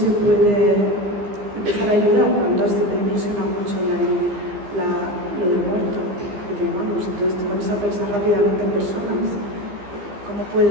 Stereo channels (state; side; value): late; left; 15 ms